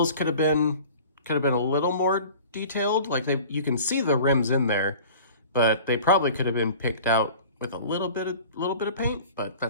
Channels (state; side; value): inverted; both; correlation -0.43